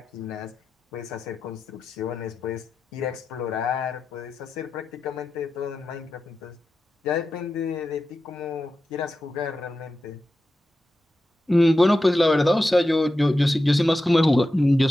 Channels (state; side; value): normal; both; correlation 0.91